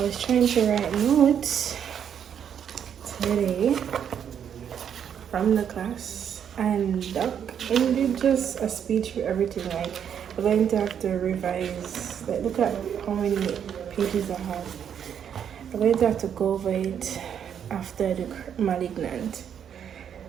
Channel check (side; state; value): left; quieter; 8.5 dB